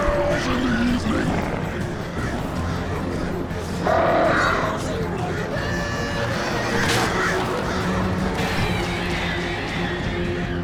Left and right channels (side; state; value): both; identical; correlation 1.00